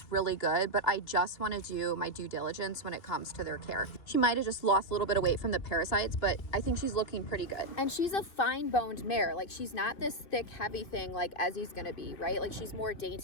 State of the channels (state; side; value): late; right; 2.9 ms